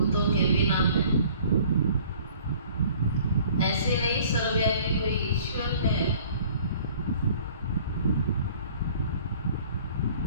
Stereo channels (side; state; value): both; inverted; correlation -0.52